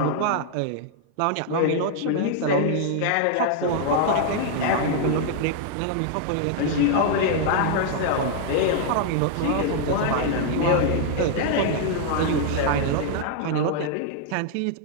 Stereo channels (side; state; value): both; different; correlation -0.01